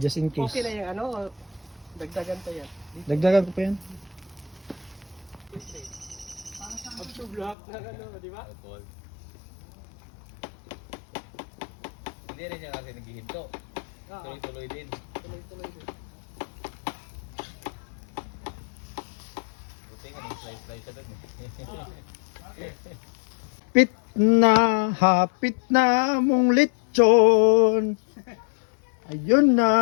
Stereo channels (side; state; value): right; drops out; at 7.6 s